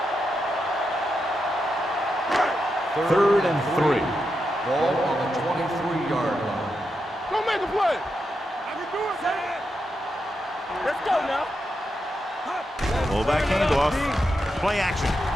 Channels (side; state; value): both; normal; correlation 0.86